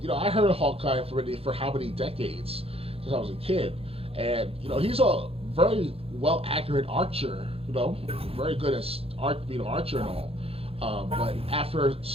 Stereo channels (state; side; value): late; left; 0.28 ms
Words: I heard of Hawkeye for how many decades since I was a kid, and he's a very well accurate archer. Very good at being an archer and all. But after